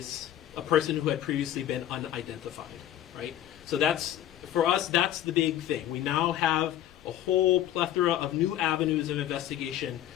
a person who had previously been unidentified, right? So that's, for us, that's the big thing. We now have a whole plethora of new avenues of investigation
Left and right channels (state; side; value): quieter; right; 11.9 dB